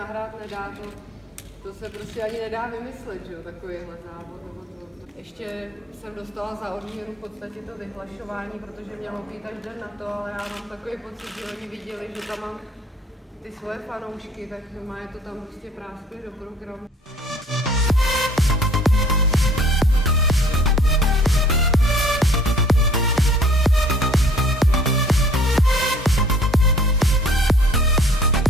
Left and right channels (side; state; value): both; normal; correlation 0.55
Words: nedá, to se prostě ani nedá vymyslet, že jo, takovýhle závod. Ještě jsem dostala za odměnu v podstatě to vyhlašování, protože mělo být až den na to, ale já mám takový pocit, že oni viděli, že tam mám ty svoje fanoušky, tak je to tam prostě práskli do programu.